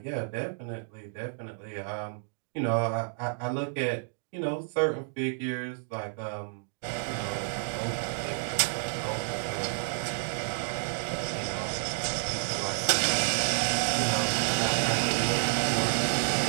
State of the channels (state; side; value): silent; left; 58 dB below the other